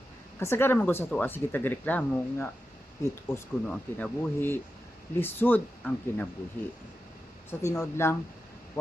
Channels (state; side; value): normal; both; correlation 0.90